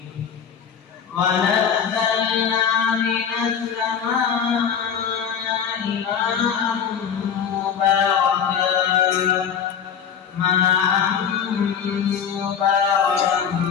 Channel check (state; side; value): quieter; right; 7.6 dB